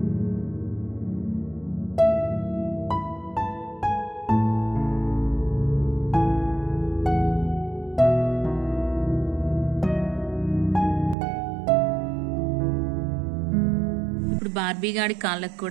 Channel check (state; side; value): drops out; left; at 11.2 s